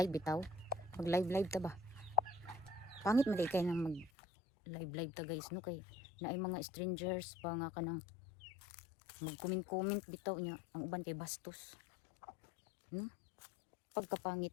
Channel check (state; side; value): drops out; right; at 4.1 s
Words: bitaw. Mag live ta ba? Pangit man kay nang mag live ta guys no kay naay mga strangers pa nga kanang mag comment bitaw nya ang uban kay bastos. No? Pagkapangit